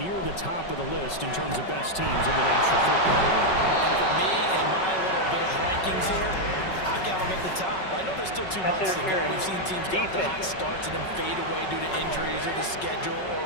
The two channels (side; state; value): right; late; 5.3 ms